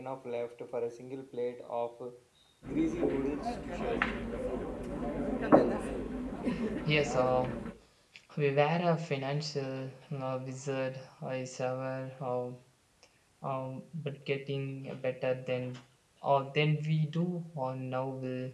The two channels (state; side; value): identical; both; correlation 1.00